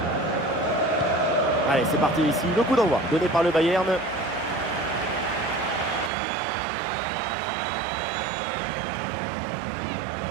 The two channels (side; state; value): left; drops out; at 6.1 s